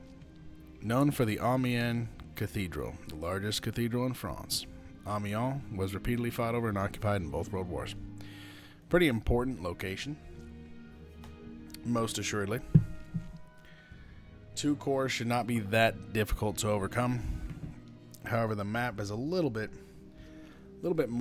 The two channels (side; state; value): both; identical; correlation 1.00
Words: Known for the Amiens Cathedral, the largest cathedral in France. Amiens was repeatedly fought over and occupied in both world wars. Pretty important location, most assuredly. 2 corps should not be that difficult to overcome. However, the map is a little bit